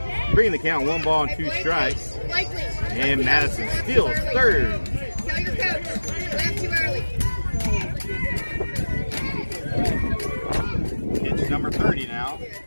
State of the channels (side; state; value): both; inverted; correlation -1.00